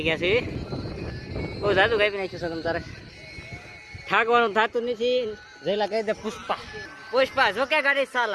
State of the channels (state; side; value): identical; both; correlation 1.00